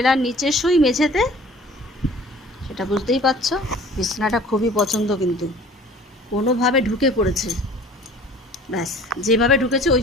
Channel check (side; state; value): both; normal; correlation 0.48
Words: নিচে শুই মেঝেতে, সেটা বুঝতেই পারছো। বিছনাটা খুবই পছন্দ, কিন্তু কোনোভাবে ঢুকে পড়েছে। ব্যাস, যেভাবে ঢুকেছে ওই